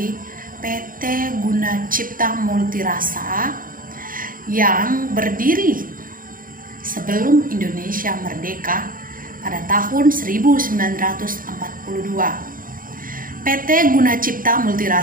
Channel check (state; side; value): late; left; 0.40 ms